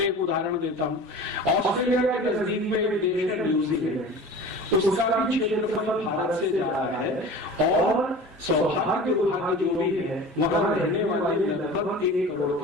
एक उदाहरण देता हूं, ऑस्ट्रेलिया के नजदीक में एक देश है न्यूजीलैंड, उसका भी क्षेत्रफल भारत से ज्यादा है और सौभाग्य दुर्भाग्य जो भी है वहां रहने वाले लगभग 1 करोड़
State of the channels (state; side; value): normal; both; correlation 0.38